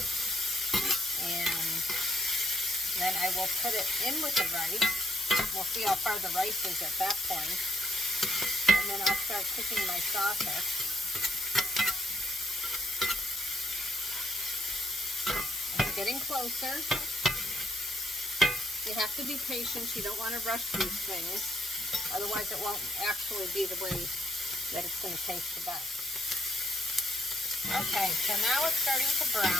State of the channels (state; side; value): normal; both; correlation 0.73